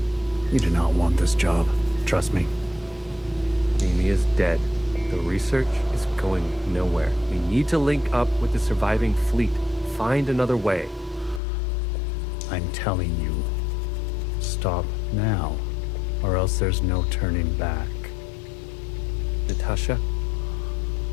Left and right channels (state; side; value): drops out; right; at 11.4 s